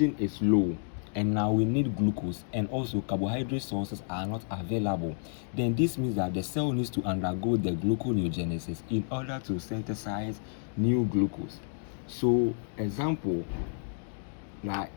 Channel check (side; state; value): right; silent; digital silence